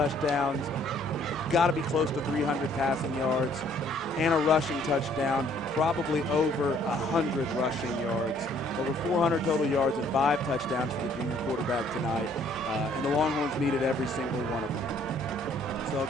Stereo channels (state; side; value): normal; both; correlation 0.62